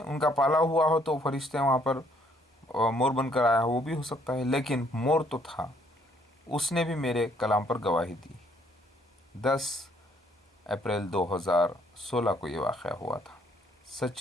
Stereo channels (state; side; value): normal; both; correlation 0.66